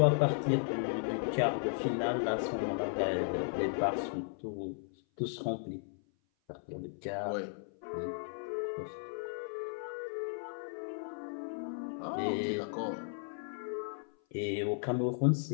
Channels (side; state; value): right; silent; 54 dB below the other